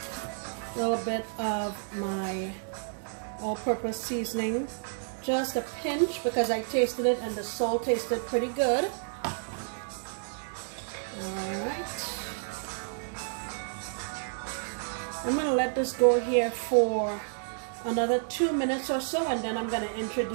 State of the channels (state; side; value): silent; left; digital silence